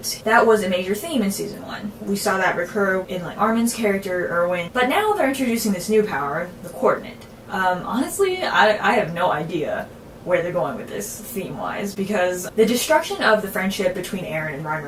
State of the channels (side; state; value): both; identical; correlation 1.00